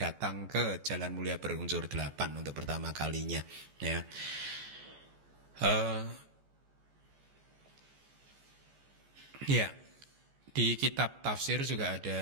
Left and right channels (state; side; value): late; left; 14 ms